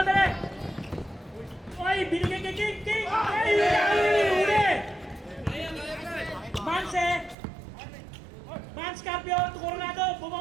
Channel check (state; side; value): drops out; left; at 7.4 s